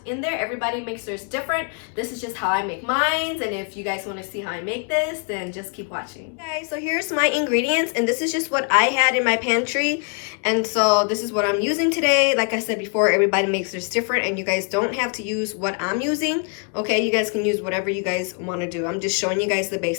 in there. Everybody makes theirs different. This is just how I make mine, and if you guys want to see how I make this, then just keep watching. Okay, so here's my ingredients and this is just what I had in my pantry. And so this is what I'm using today. Like I said before, everybody makes this different and you guys don't have to use what I'm using. Okay, you guys can use whatever you guys want to do. I'm just showing you guys the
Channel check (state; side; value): quieter; right; 39.0 dB